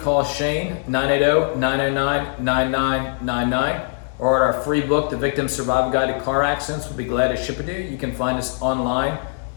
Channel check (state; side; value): silent; right; digital silence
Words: Shane, 980-909-9999, or at our free book, The Victim Survival Guide to Car Accidents. We'll be glad to ship it to you. You can find us online